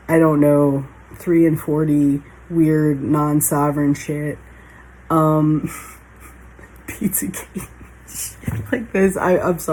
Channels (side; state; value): both; identical; correlation 1.00